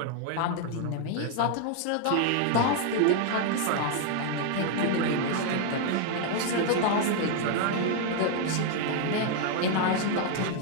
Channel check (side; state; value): both; different; correlation 0.00